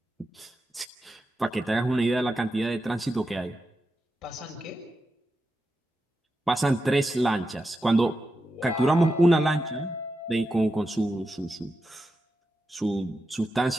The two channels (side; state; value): both; normal; correlation 0.89